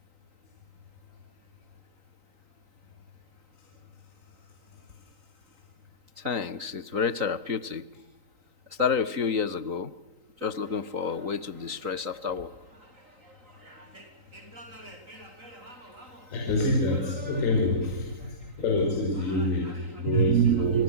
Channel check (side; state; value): left; late; 3.9 ms